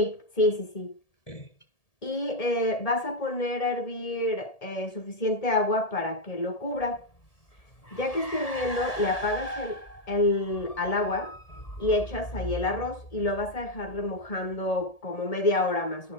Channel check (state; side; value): late; right; 1.7 ms